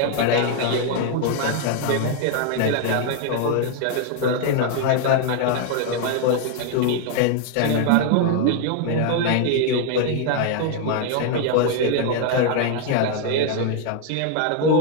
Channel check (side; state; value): both; different; correlation 0.00